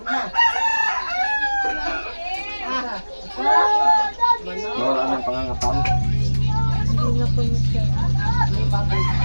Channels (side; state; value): both; inverted; correlation -1.00